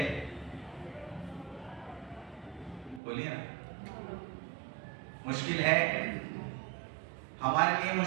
बोलिए ना, मुश्किल है। हमारे लिए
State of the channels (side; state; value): left; drops out; at 3.0 s